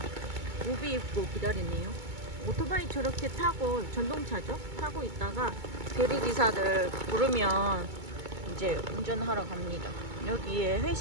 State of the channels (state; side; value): late; left; 2.2 ms